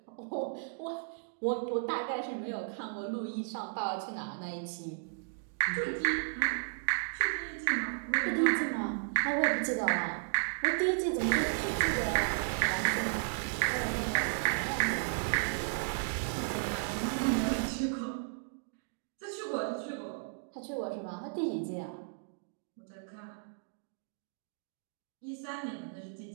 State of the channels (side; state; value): left; silent; digital silence